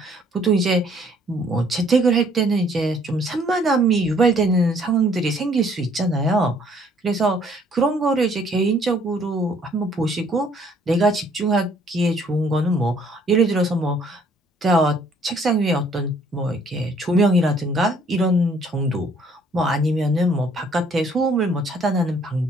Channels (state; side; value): normal; both; correlation 0.62